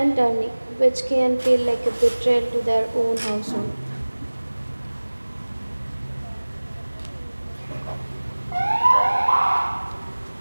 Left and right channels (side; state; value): both; inverted; correlation -1.00